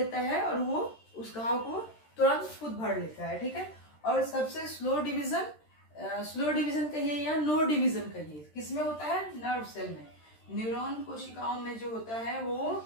है और वो उस घाव को तुरंत खुद भर लेता है, ठीक है। और सबसे स्लो डिवीजन कहिए या नो डिवीजन कहिए, किसमें होता है, नर्व सेल में। न्यूरॉन कोशिकाओं में जो होता है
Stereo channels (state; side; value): late; right; 13 ms